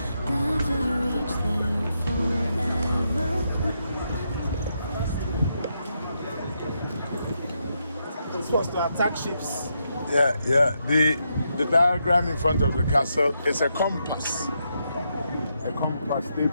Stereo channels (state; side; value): inverted; both; correlation -0.81